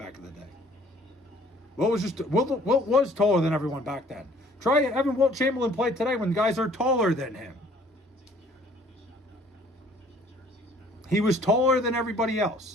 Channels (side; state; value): both; normal; correlation 0.56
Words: in the day. Wilt was taller than everyone back then. Try having Wilt Chamberlain play today when guys are taller than him. He was taller than everybody